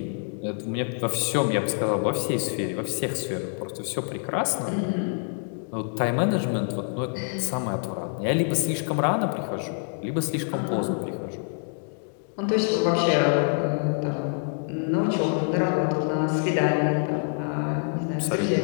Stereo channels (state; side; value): silent; right; 55 dB below the other